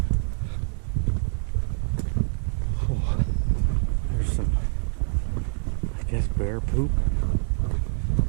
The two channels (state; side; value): silent; left; 59 dB below the other